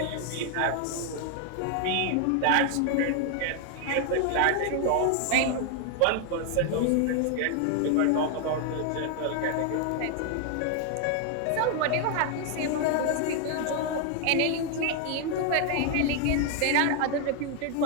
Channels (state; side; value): different; both; correlation 0.00